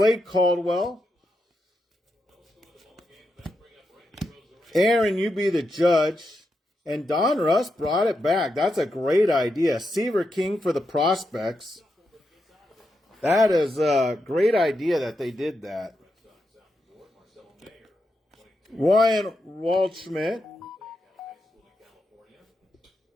Caldwell. Aaron, you be the judge. And Donruss brought it back. That's a great idea. Seaver King for the prospects. That is a great idea that they did that. Ryan Waldschmidt.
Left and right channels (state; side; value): normal; both; correlation 0.85